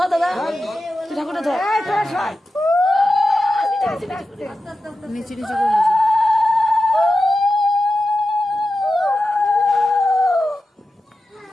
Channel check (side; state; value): both; normal; correlation 0.92